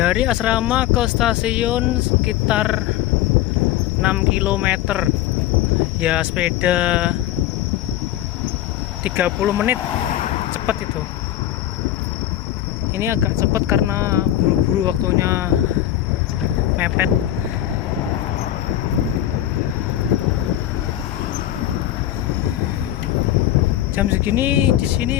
asrama ke stasiun sekitar 6 km. Ya, sepeda 30 menit, cepat itu. Ini agak cepat karena buru-buru, waktunya mepet. Jam segini di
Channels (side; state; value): right; quieter; 13.1 dB